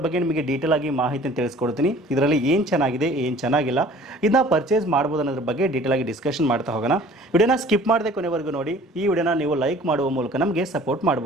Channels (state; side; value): normal; both; correlation 0.49